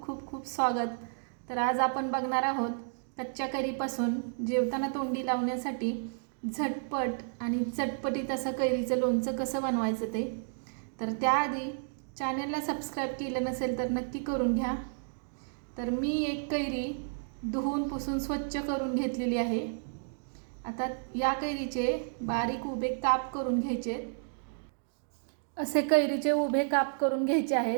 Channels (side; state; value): left; silent; digital silence